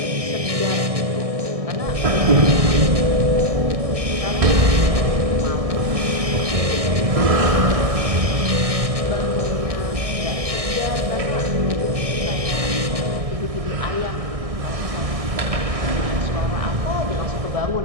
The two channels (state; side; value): late; left; 1.6 ms